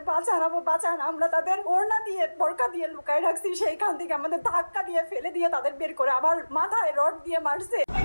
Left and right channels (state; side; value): inverted; both; correlation -1.00